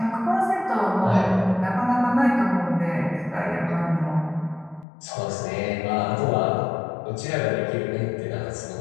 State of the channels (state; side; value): drops out; right; at 4.9 s